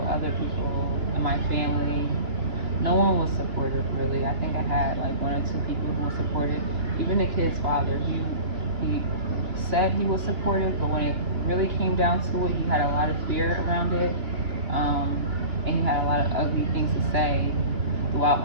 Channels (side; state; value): left; late; 2.8 ms